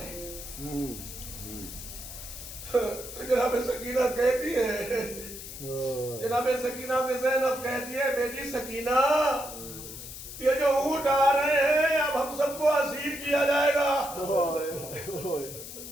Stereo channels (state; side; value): noise; left; hiss, 11 dB below the sound